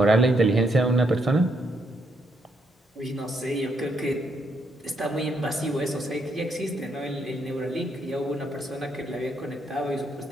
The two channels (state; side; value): normal; both; correlation 0.75